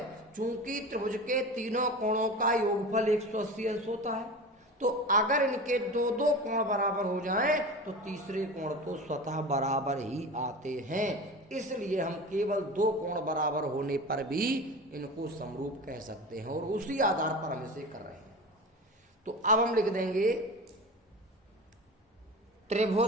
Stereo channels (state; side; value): normal; both; correlation 0.31